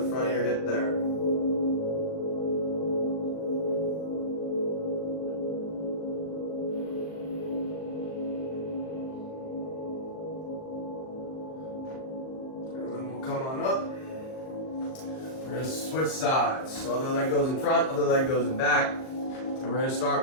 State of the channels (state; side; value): late; right; 38 ms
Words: front of your hip there. And then we'll come on up. We're gonna switch sides. So other leg goes in front, other leg goes in back. And we're gonna start